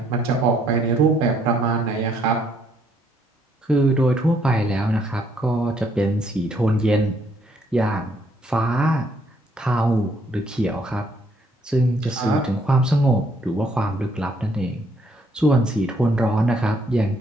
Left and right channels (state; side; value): normal; both; correlation 0.69